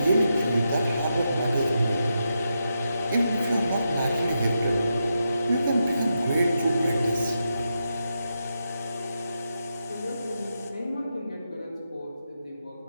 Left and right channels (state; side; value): inverted; both; correlation -0.85